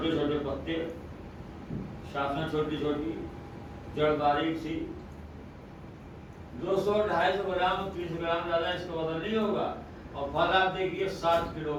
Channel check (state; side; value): identical; both; correlation 1.00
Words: چھوٹے پتے، شاخیں چھوٹی چھوٹی، جڑ باریک سی. 200-250 گرام 30 گرام زیادہ اس کا وزن نہیں ہوگا. اور پھل آپ دیکھیے 7 کلو